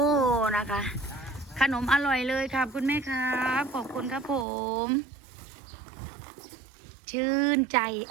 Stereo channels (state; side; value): drops out; left; at 4.5 s